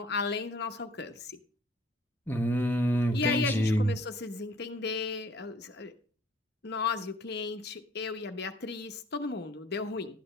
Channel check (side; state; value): both; normal; correlation 0.56